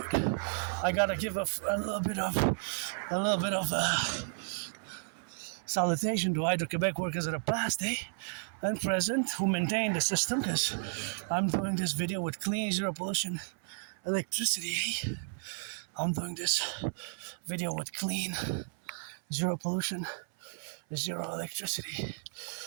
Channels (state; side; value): silent; left; 56 dB below the other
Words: I gotta give a little bit of salutation to Hydro-Quebec workers that are past, and present, who maintain the system, because I'm doing this video with clean, zero pollution electricity. I'm doing this video with clean, zero pollution, zero electricity,